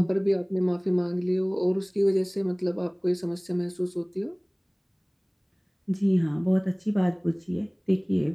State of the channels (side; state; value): both; identical; correlation 1.00